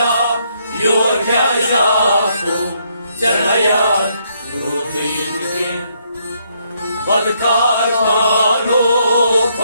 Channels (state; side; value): inverted; both; correlation -0.73